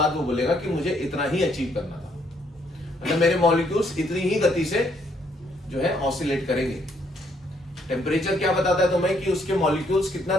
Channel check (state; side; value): normal; both; correlation 0.70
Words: वो बोलेगा कि मुझे इतना ही अचीव करना था, मतलब मेरे मॉलिक्यूल्स इतनी ही गति से जो है ऑसिलेट करेंगे। टेम्परेचर क्या बताता है तुम्हें कि उसके मॉलिक्यूल्स कितना